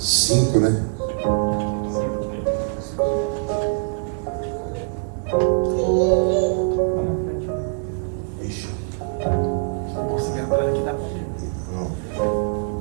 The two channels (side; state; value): left; silent; 63 dB below the other